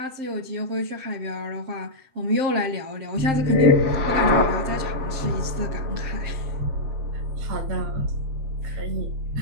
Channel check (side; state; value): left; late; 7.6 ms